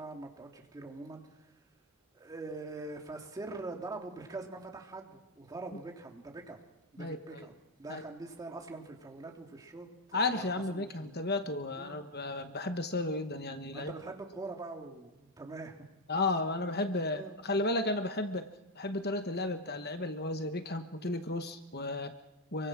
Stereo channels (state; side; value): normal; both; correlation 0.06